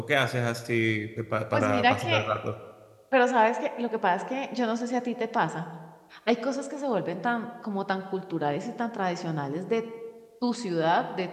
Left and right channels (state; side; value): identical; both; correlation 1.00